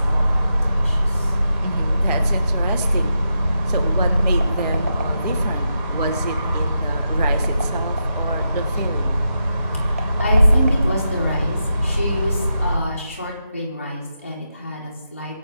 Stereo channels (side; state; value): both; inverted; correlation -0.85